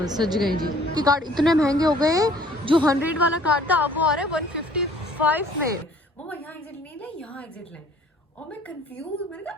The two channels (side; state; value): both; normal; correlation 0.55